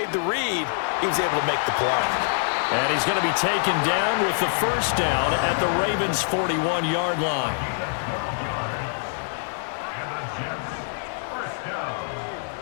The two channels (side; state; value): right; silent; digital silence